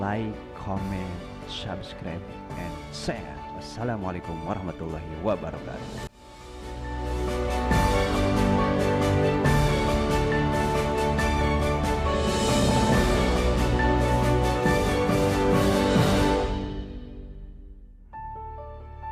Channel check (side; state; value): both; identical; correlation 1.00